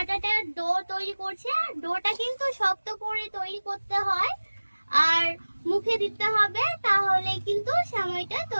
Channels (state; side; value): inverted; both; correlation -1.00